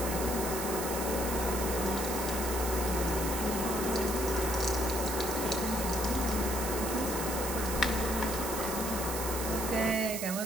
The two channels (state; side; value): noise; right; hiss, 4 dB below the sound